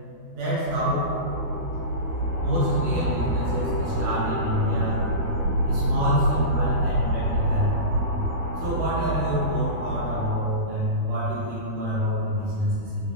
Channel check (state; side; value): late; left; 12 ms